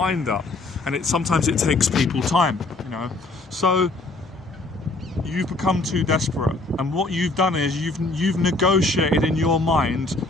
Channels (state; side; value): quieter; right; 3.1 dB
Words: up, and sometimes it takes people time. You know, so you've become too desperate, and what you've done is you've negotiated in your mind,